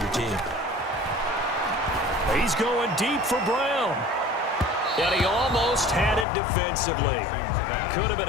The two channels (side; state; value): right; drops out; at 6.2 s